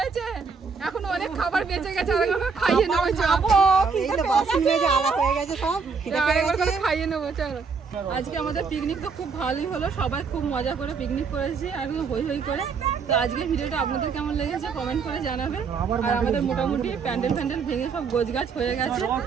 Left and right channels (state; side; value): quieter; left; 5.3 dB